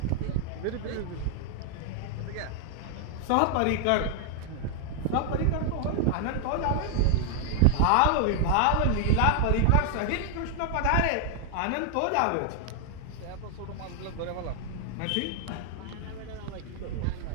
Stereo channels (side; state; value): both; different; correlation 0.00